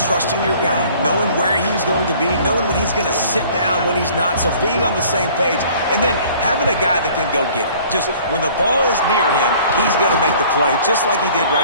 trusting your guy, knowing where he's going to be, knowing when he's going to sit down, when he's not, so being on the same page, and then having a guy that can go get it. Just when the ball is near him, he's going to make the play, just like he did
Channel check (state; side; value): inverted; both; correlation -0.52